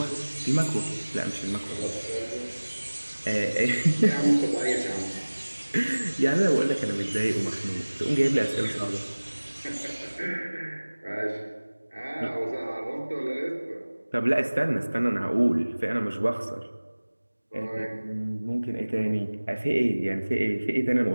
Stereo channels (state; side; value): inverted; both; correlation -1.00